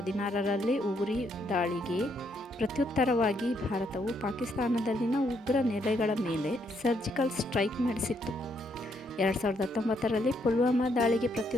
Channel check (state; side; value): normal; both; correlation 0.74